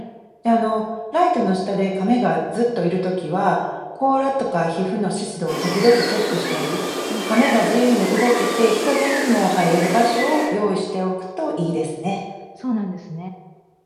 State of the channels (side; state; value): both; identical; correlation 1.00